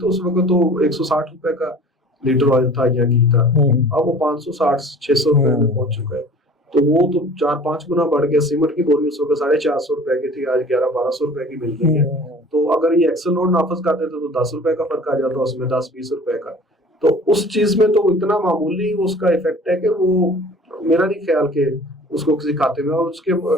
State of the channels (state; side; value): normal; both; correlation 0.45